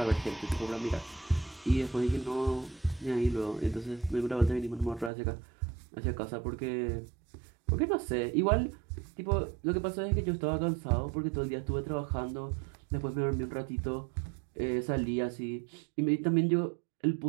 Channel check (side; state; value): left; drops out; at 5.1 s